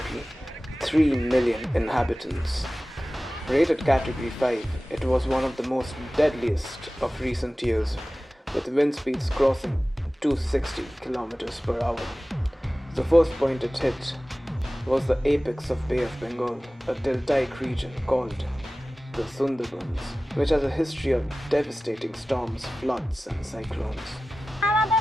3 million inhabitants. Rated category 5, it was one of the most deadliest of recent years, with wind speeds crossing 260 km per hour. The first point it hit was the apex of Bay of Bengal, a deltaic region called the Sunderbans, which has a history of devastating storms, floods and cyclones.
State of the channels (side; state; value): both; normal; correlation 0.97